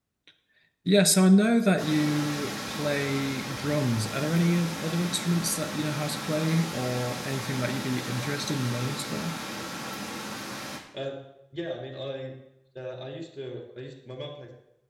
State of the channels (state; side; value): identical; both; correlation 1.00